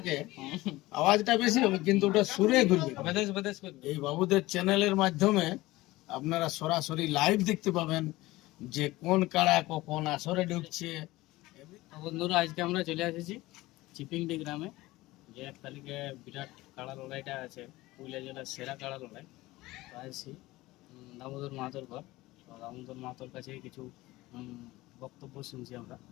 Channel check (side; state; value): right; quieter; 18.9 dB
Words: আওয়াজটা বেশি হবে, কিন্তু ওটা সুরে ঘুরবে। বেদেশ বেদেশ করবে। এই বাবুদের চ্যানেলের মাধ্যমে আপনারা সরাসরি লাইভ দেখতে পাবেন যে কোন কাড়া কখন আসরে ঢুকছে। তো বন্ধুরা, আজকে আমরা চলে এসেছি চিপিংডি গ্রামে, যে 1 তারিখে বিরাট কাড়া লড়াইটা আছে, পুরুলিয়া জেলার সেরা কাড়া লড়াই। তো আসছি দামোদর মাহাতোর ঘর। তো দামোদর মাহাতোর কাছে কিছু বক্তব্য শুনছি আমরা,